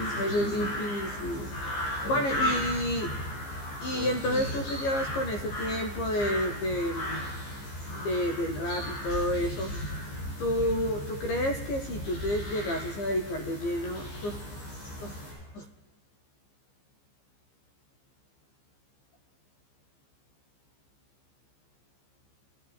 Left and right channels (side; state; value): right; late; 15 ms